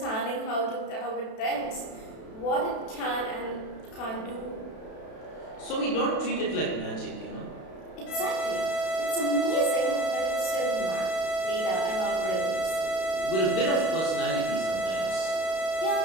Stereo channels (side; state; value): right; late; 32 ms